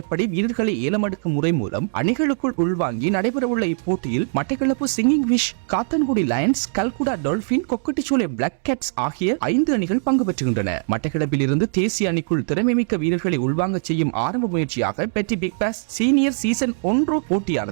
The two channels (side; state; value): left; silent; 65 dB below the other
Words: வீரர்களை ஏலமெடுக்கும் முறை மூலம் அணிகளுக்குள் உள்வாங்கி நடைபெறவுள்ள இப்போட்டியில் Batticaloa singing fish, Kattankudy Lions, Kalkudah Dolphin, Kokkadicholai Black Cats ஆகிய 5 அணிகள் பங்கு பெற்றுகின்றன. மட்டக்களப்பில் இருந்து தேசிய அணிக்குள் திறமைமிக்க வீரர்களை உள்வாங்க செய்யும் ஆரம்ப முயற்சியாக பெட்டி பிக் பாஸ் சீனியர் சீசன் 1